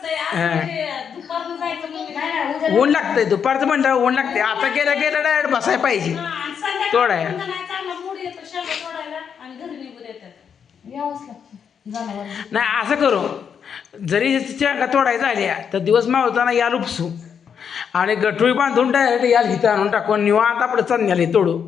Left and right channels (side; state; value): right; quieter; 7.3 dB